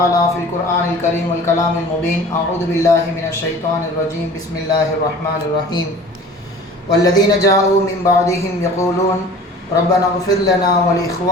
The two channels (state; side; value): normal; both; correlation 0.44